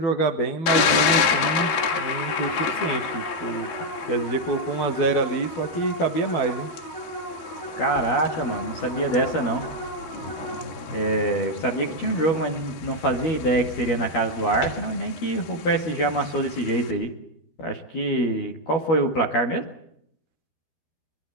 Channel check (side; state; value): right; late; 13 ms